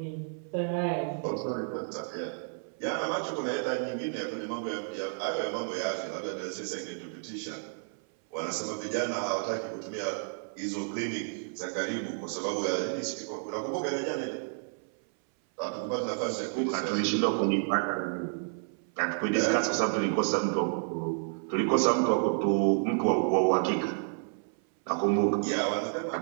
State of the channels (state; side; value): silent; left; 57 dB below the other